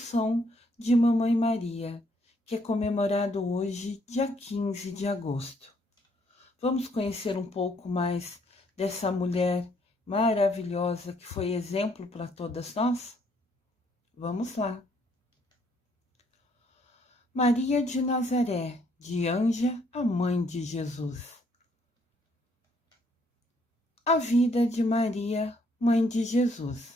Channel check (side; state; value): both; normal; correlation 0.68